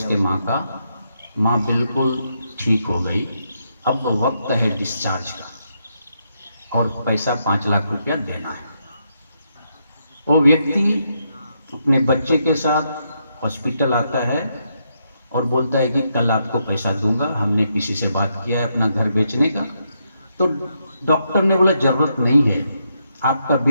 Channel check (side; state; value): both; inverted; correlation -0.79